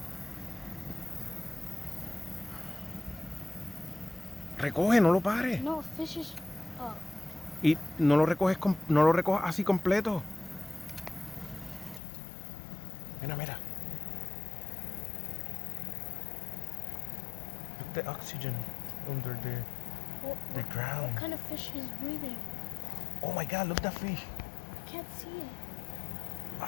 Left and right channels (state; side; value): drops out; right; at 12.0 s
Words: Recoge, no lo pares. No, fish is. Oh. Y no lo recoges, no lo recojas así completo. Mira, mira. Look the oxygen under the ground. What kind of fish is breathing? Oh my God, look that fish. I can't see it.